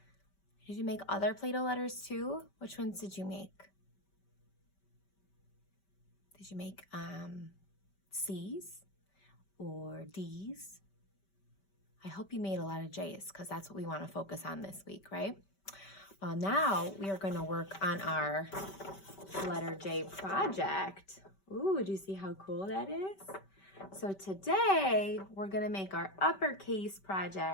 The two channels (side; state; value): right; late; 5.2 ms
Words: Did you make other Play-Doh letters too? Which ones did you make? Did you make C's or D's? I hope you made a lot of J's because that's what we want to focus on this week, right? Well, now we are going to work on our letter J project. Ooh, do you see how cool that is? So today we're going to make our uppercase